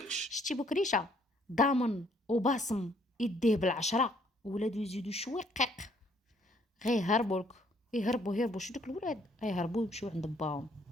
شتي بكريشه ضامن وباصم يديه بالعشره، ولادو يزيدوا شوي قيق غيهربوا لك. يهربوا شو دوك الولاد غيهربوا يمشيو عند باهم،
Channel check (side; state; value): both; normal; correlation 0.65